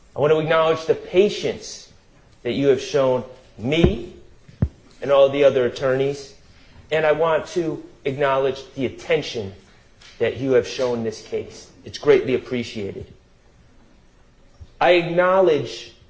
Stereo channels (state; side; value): identical; both; correlation 1.00